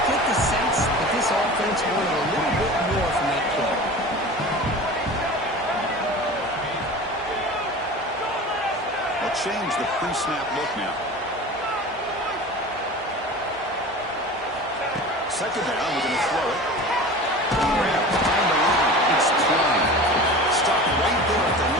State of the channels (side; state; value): both; normal; correlation 0.36